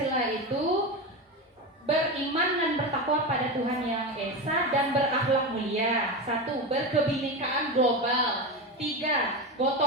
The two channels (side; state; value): both; normal; correlation 0.19